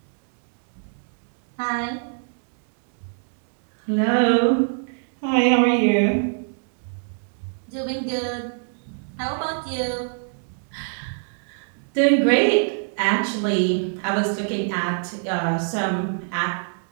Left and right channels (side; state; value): left; silent; digital silence